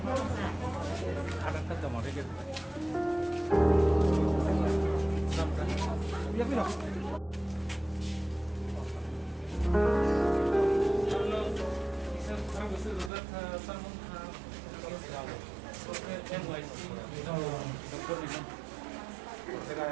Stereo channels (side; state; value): left; drops out; at 13.1 s